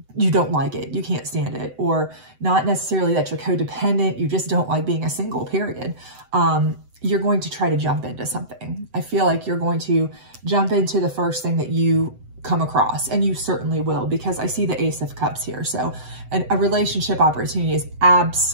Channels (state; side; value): late; left; 7.9 ms